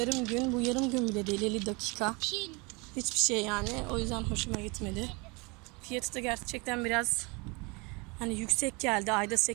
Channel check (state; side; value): quieter; left; 28.2 dB